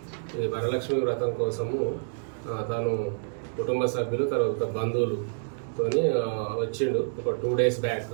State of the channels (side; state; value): left; silent; digital silence